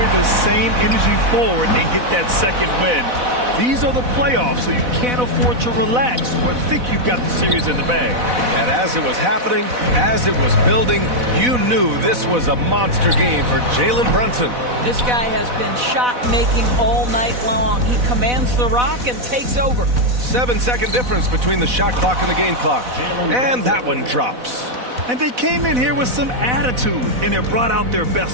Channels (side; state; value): left; late; 4.1 ms